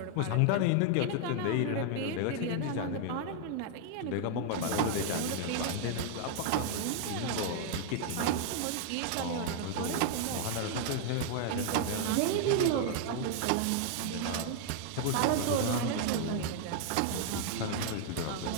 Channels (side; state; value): both; different; correlation 0.00